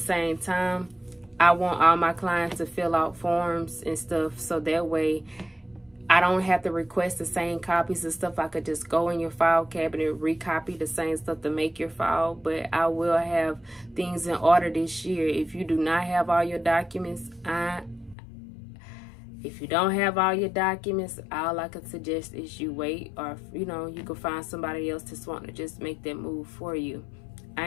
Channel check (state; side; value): drops out; right; at 18.2 s